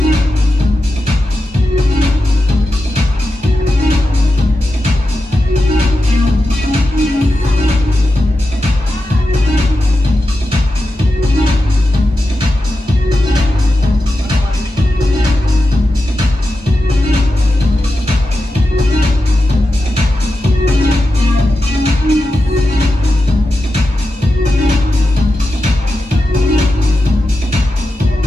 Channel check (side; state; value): both; normal; correlation 0.90